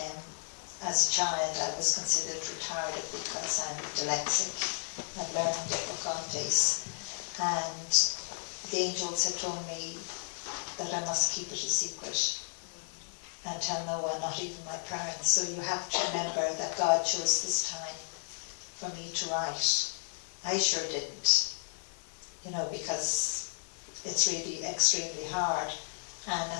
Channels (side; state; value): right; silent; digital silence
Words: As a child I was considered retarded because I'm dyslexic and learning difficulties. And the angels had told me that I must keep it a secret and tell no one, not even my parents. So you have to remember that God chose this time for me to write. I sure didn't, you know, because it's really extremely hard. And